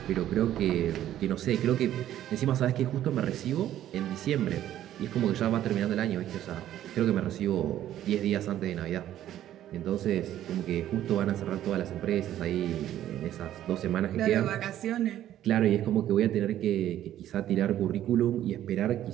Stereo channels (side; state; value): left; quieter; 12.2 dB